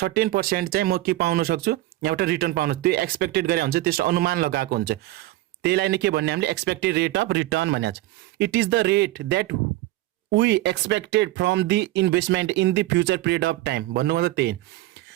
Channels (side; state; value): left; quieter; 17.0 dB